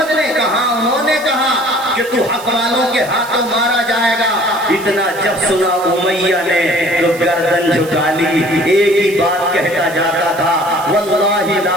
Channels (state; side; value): noise; right; hiss, 17 dB below the sound